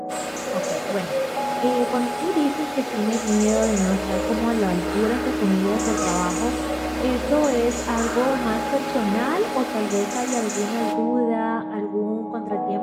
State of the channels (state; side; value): identical; both; correlation 1.00